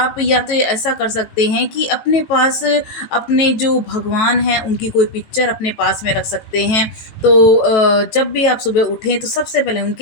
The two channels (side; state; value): right; late; 18 ms